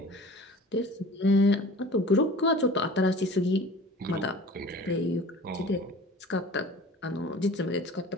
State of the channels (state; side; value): normal; both; correlation 0.43